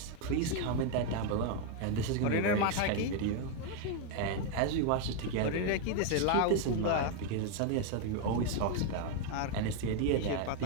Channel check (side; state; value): both; different; correlation 0.01